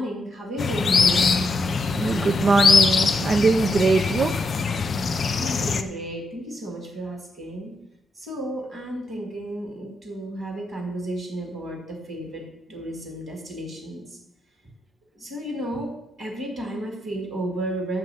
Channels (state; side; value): normal; both; correlation 0.81